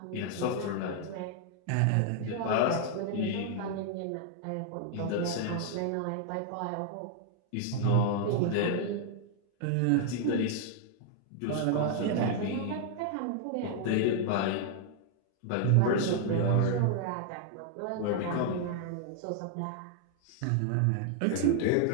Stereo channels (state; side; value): different; both; correlation 0.00